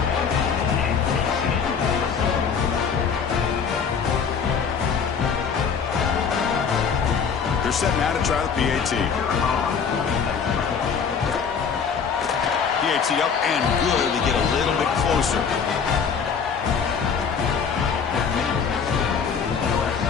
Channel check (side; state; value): right; quieter; 6.4 dB